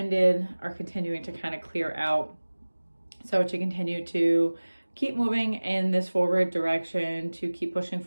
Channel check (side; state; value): both; inverted; correlation -1.00